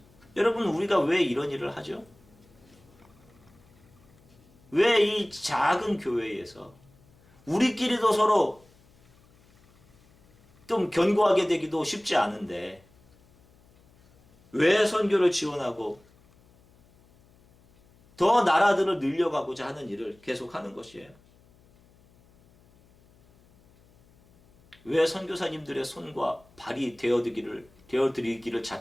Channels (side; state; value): left; noise; hum, 30 dB below the sound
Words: 여러분, 우리가 왜 이런 일을 하죠? 왜 이 작은 교회에서 우리끼리도 서로 좀 견고하게 되기도 쉽지 않은데 왜 선교를 지원하고 더 나라들을 늘려가고자 하는 일을 계속하는 것이에요? 왜 선교사님들의 손과 발이 되어드리기를